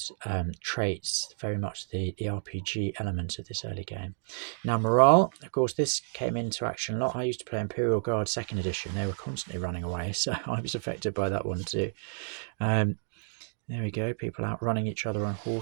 traits very much the RPG element of this early game. Now morale, of course, this came into action a lot. I used to play Imperial Guard 2nd edition. They were constantly running away, so I was affected by that one too. There we go, people out running each other on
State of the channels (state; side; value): silent; left; digital silence